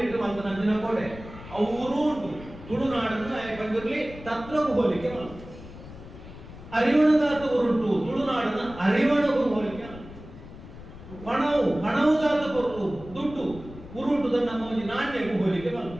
ಮಂತ ನಂದಿನ ಕೋಡೆ ಅವರು ಉಂಟು ತುಳುನಾಡನ್ನು ಪಂಜುರ್ಲಿ ತತ್ವಕ್ಕೂ ಹೋಲಿಕೆ ಮಾಡ ಅರಿವಣದಾತು ಉರುಂಟು ತುಳುನಾಡನ್ನ ಅರಿವಣಗೂ ಹೋಲಿಕೆ ಪಣವುದಾತು ಪೊರ್ಲು ದುಡ್ಡು ಉರುಂಟು ನಮ್ಮ ಒಂದು ನಾಣ್ಯಗೂ ಹೋಲಿಕೆ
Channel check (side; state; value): left; noise; rumble, 15 dB below the sound